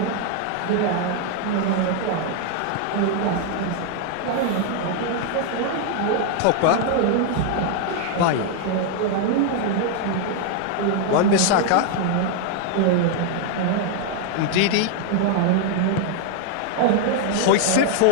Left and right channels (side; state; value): both; different; correlation 0.00